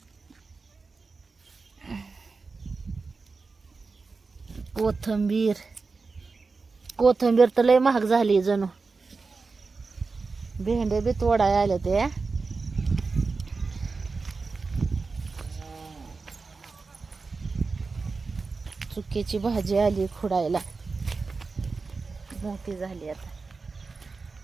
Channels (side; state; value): left; quieter; 4.3 dB